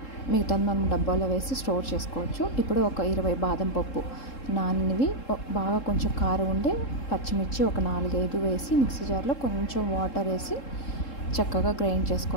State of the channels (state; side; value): late; right; 3.7 ms